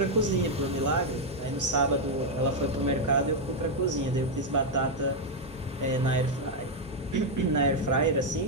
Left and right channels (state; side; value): normal; both; correlation 0.01